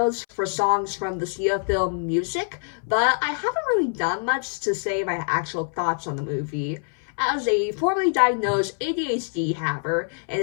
for songs from the Sia film Music, but I haven't really done much to say my actual thoughts on the movie. As a formerly diagnosed ADHD haver and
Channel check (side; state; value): right; silent; 62 dB below the other